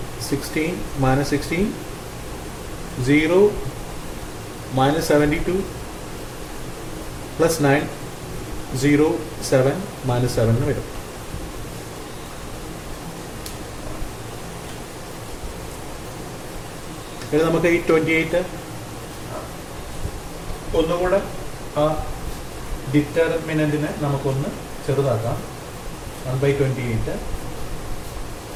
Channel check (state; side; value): identical; both; correlation 1.00